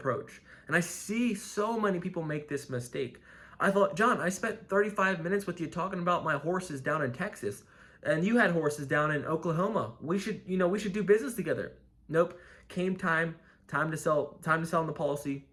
And I see so many people make this mistake. I thought, John, I spent 35 minutes with you talking about my horses down in Texas, and you had horses down in Oklahoma. We should do business together. Nope. Came time to sell on the policy.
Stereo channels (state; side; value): identical; both; correlation 1.00